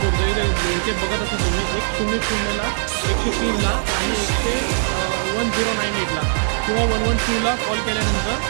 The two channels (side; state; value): left; silent; digital silence